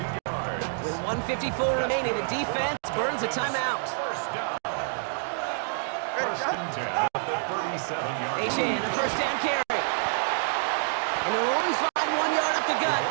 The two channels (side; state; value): left; silent; digital silence